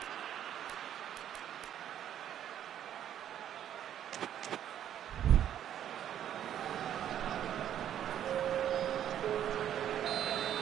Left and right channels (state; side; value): quieter; left; 10.4 dB